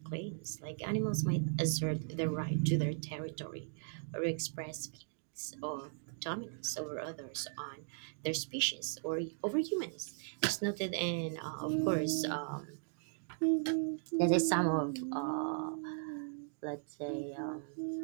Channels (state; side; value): silent; left; digital silence